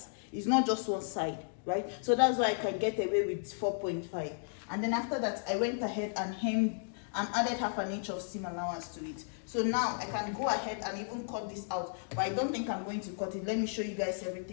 It's not just one side, right? So that's why I can get away with 4.5. And then after that, I went ahead and hemmed and added 1/2 inch of seam allowance to it. So now I can go ahead and even cut this out, but I don't think I'm going to cut it. Let me show you guys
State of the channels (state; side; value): silent; right; digital silence